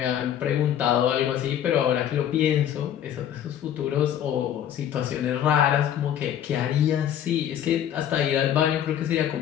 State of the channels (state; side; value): quieter; right; 10.3 dB